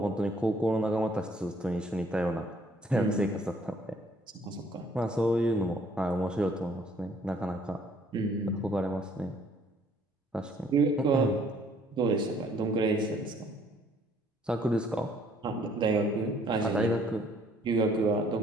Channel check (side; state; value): both; normal; correlation 0.62